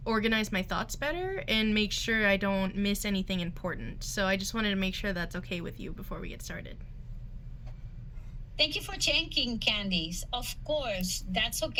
organize my thoughts better and make sure I don't miss anything important. So I just wanted to make sure that's okay with you before we get started. Thank you for checking, Candice. Of course, that's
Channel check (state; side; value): identical; both; correlation 1.00